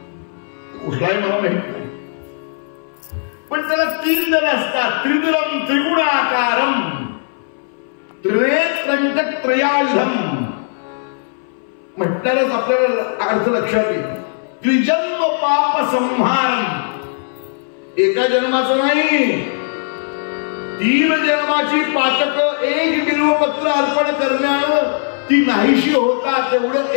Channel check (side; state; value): right; silent; 63 dB below the other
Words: कुठलाही मला माहित नाही. पण त्याला 3 दल असतात. त्रिदलं त्रिगुणाकारं त्रिनेत्रं च त्रयायुधं म्हटल्यानंच आपल्याला अर्थ लक्षात येईल. त्रिजन्म पाप संहारं. एका जन्माचं नाही, 3 जन्माची पातक 1 बिल्वपत्र अर्पण करण्यानं ती नाहीशी होतात. तेवढं